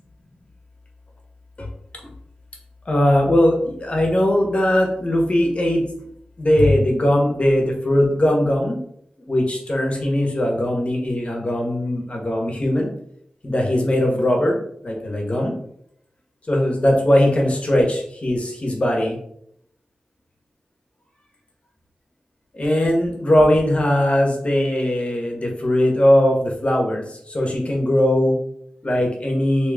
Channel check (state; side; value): normal; both; correlation 0.94